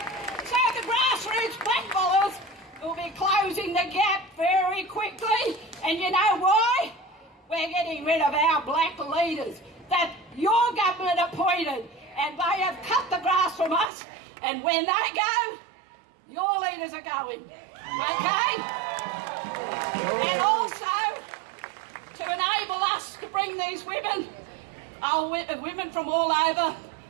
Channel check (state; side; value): drops out; left; at 13.9 s